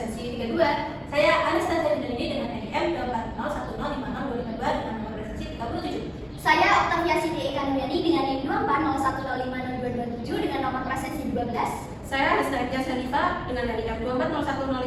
32. Saya Anastasia Yudhini dengan NIM 240105052 dengan nomor presensi 37. Saya Octavia Siti Ekanuryani dengan NIM 240105227 dengan nomor presensi 12. Saya Anastasia Salifa dengan NIM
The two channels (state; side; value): identical; both; correlation 1.00